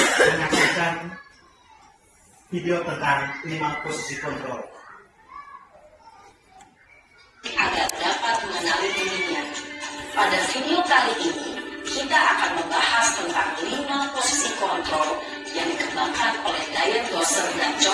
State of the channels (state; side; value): identical; both; correlation 1.00